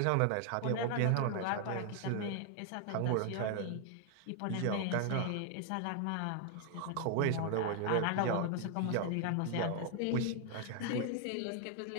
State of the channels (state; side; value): different; both; correlation 0.00